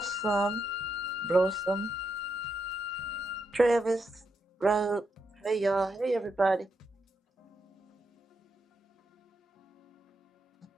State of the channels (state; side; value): normal; both; correlation 0.82